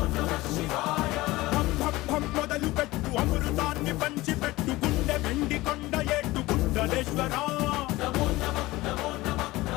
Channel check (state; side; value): quieter; right; 19.2 dB